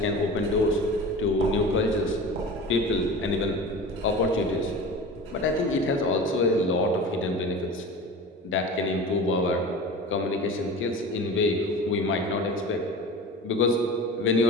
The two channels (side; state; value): both; normal; correlation 0.34